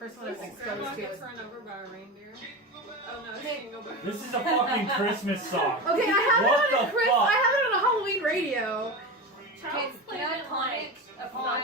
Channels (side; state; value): both; normal; correlation 0.24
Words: one I was exposed to was. Run over by a reindeer. Oh no, she can go back. This is a fucking Christmas song. Okay, I have What it on the a fuck? I have it on a Halloween radio. Child's Play didn't like